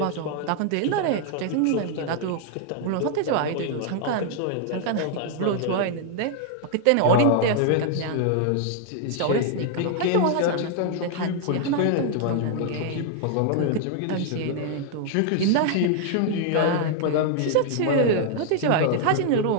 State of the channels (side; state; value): both; different; correlation 0.00